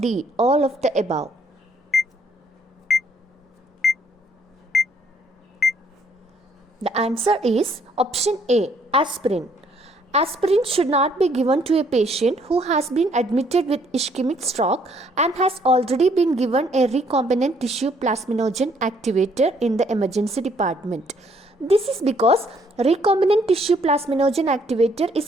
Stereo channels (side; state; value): both; normal; correlation 0.66